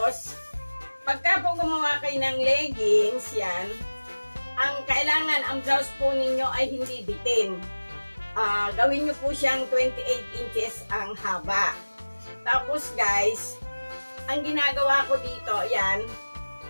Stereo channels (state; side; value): inverted; both; correlation -1.00